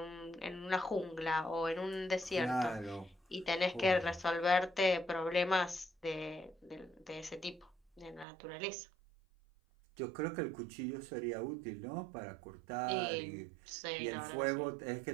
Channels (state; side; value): drops out; left; at 8.2 s